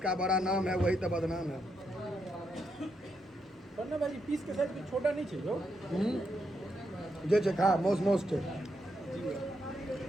बड़ा नाम है वही तो बदनाम है। भाई पीस के साइज छोटा नहीं छै जो जे छै खा, मौस छै।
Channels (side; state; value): both; normal; correlation 0.80